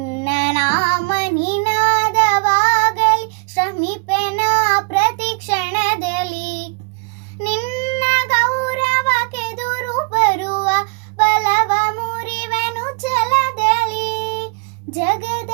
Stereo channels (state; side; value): quieter; left; 33.5 dB